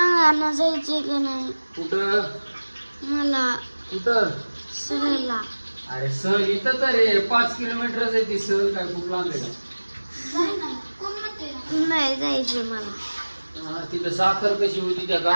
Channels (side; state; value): both; inverted; correlation -1.00